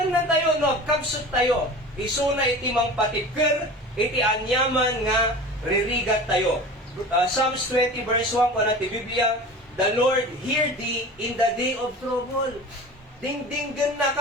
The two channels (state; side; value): normal; both; correlation 0.36